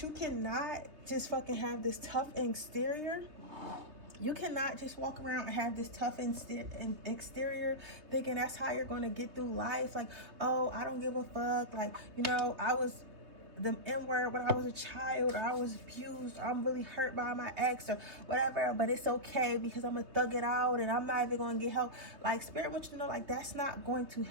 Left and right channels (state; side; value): late; left; 3.2 ms